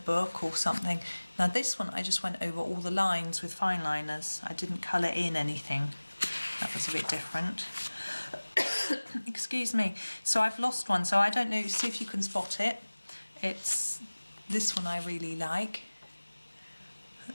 or something. Now this one I just went over all the lines with fine liners. I didn't colour in anything. That was a bit different. Excuse me. So I've lost one, so I don't know, see if you can spot it. It's this one I really like.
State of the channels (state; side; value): inverted; both; correlation -1.00